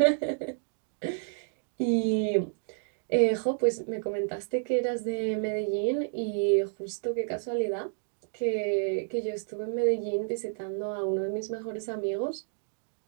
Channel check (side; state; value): left; silent; digital silence